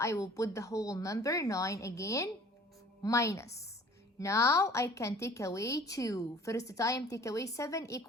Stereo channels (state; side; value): normal; both; correlation 0.50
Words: will put the whole number 9 again, minus. Now I can take away 2. First time take away 7